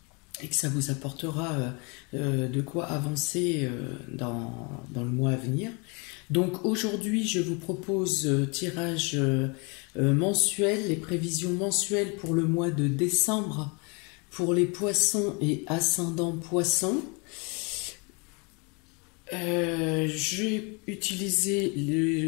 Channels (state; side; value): quieter; right; 31.3 dB